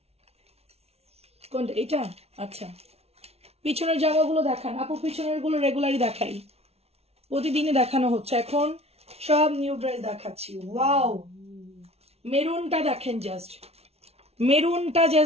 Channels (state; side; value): late; left; 0.30 ms